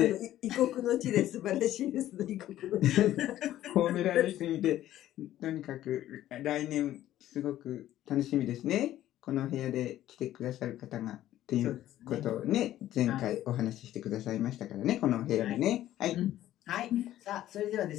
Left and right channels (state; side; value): quieter; right; 13.3 dB